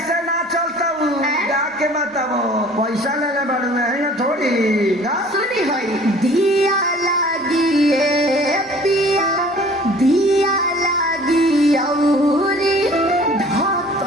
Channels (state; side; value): normal; both; correlation 0.50